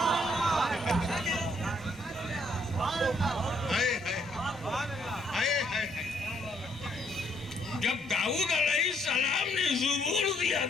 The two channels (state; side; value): normal; both; correlation 0.70